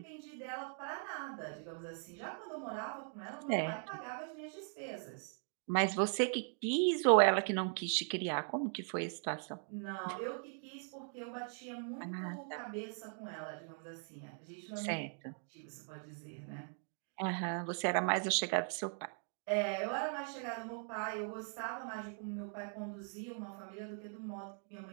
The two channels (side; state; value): left; silent; 51 dB below the other